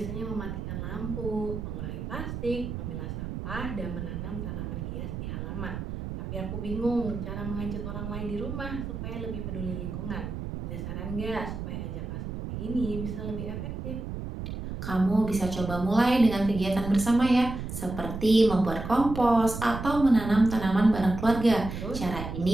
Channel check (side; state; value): right; noise; rumble, 6 dB below the sound